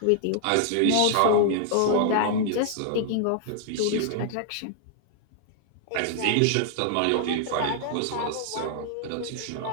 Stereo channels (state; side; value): different; both; correlation -0.01